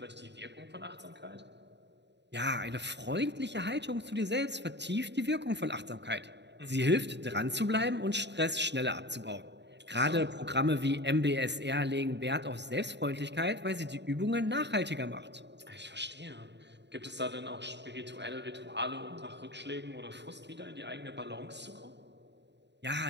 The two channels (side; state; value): left; late; 0.51 ms